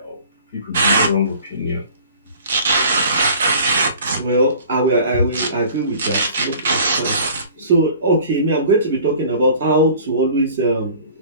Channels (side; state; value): both; inverted; correlation -0.47